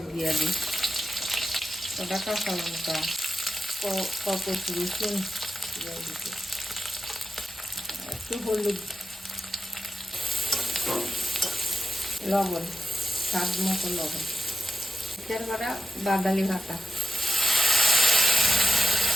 দিয়া দিই, কটা কাঁচা লঙ্কা, কত রসুন দিয়া দিতে, একটু হলুদ, লবণ, স্বাদ মতো লবণ, মিক্সচার করা বাদালি ভাতা,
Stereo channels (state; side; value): normal; both; correlation 0.90